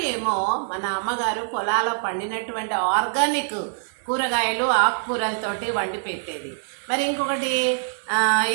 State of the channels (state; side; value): silent; left; 63 dB below the other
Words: ఏమో మన అమ్మగారు పొలాల్లో పండినటువంటి ఆర్గానిక్ కూరగాయలు ఆకుకూరలతోటి వండి పెట్టేది. మరి ఇంకొకటి